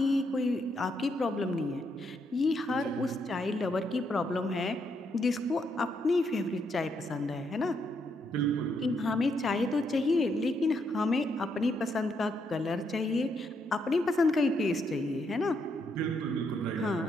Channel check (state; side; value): normal; both; correlation 0.77